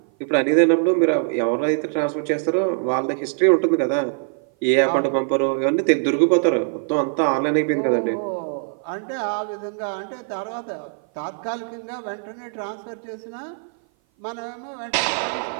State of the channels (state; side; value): silent; left; 56 dB below the other